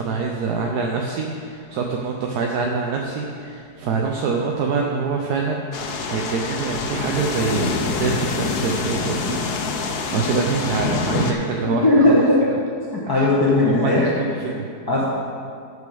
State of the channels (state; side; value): late; left; 4.7 ms